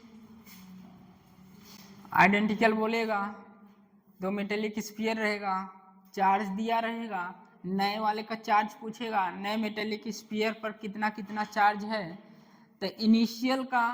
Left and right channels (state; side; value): identical; both; correlation 1.00